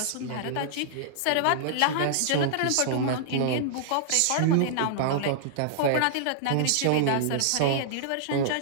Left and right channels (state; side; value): different; both; correlation -0.01